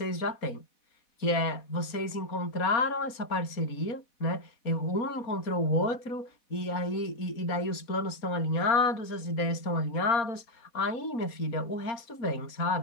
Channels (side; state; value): right; late; 4.3 ms